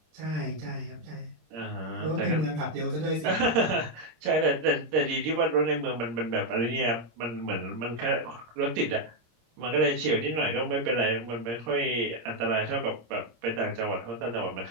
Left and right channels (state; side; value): late; left; 26 ms